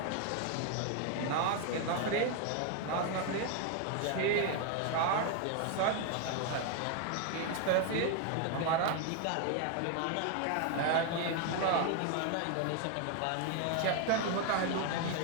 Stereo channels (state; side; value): different; both; correlation 0.01